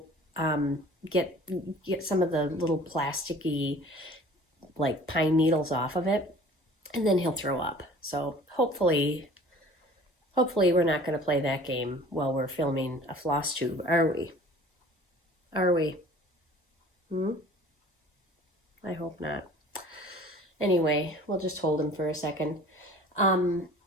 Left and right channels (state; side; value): normal; both; correlation 0.47